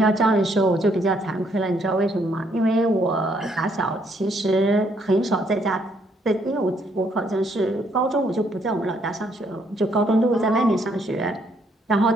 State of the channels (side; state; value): both; normal; correlation 0.70